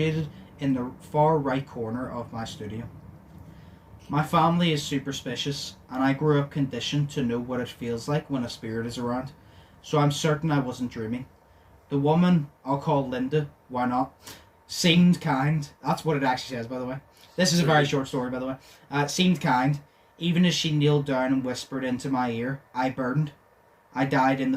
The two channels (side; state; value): both; identical; correlation 1.00